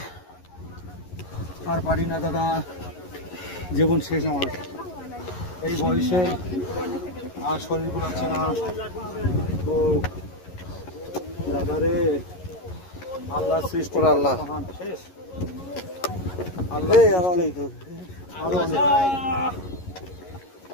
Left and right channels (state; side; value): late; right; 11 ms